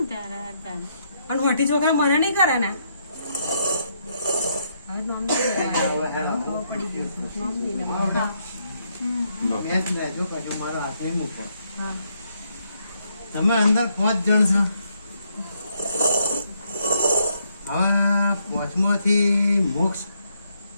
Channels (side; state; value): both; inverted; correlation -0.75